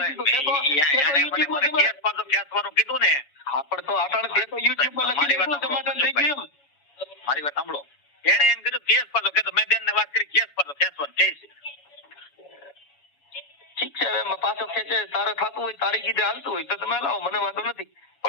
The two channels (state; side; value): late; right; 7.1 ms